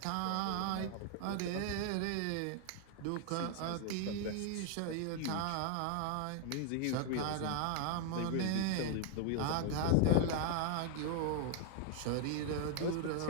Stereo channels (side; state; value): both; different; correlation 0.00